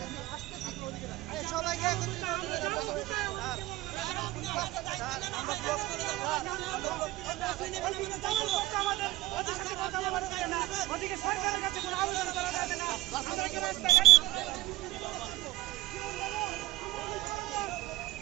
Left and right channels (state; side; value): quieter; left; 17.8 dB